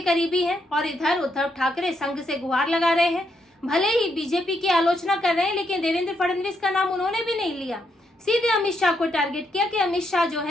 करीबी हैं और इधर उद्धव ठाकरे संघ से गुहार लगा रहे हैं। भले ही बीजेपी की आलोचना कर रहे हैं, लेकिन देवेंद्र फडणवीस का नाम उन्होंने भी नहीं लिया। सीधे अमित शाह को टारगेट किया कि अमित शाह जो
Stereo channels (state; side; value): normal; both; correlation 0.78